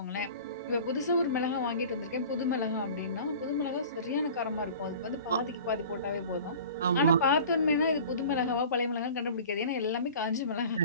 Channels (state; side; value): inverted; both; correlation -0.42